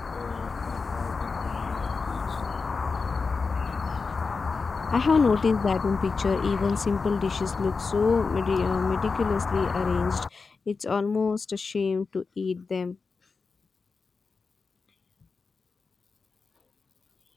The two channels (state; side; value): quieter; right; 4.6 dB